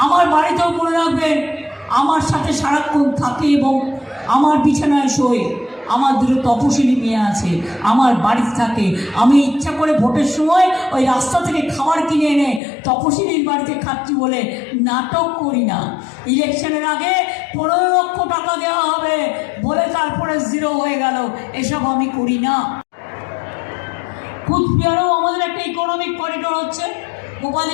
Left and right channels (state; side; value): drops out; right; at 12.6 s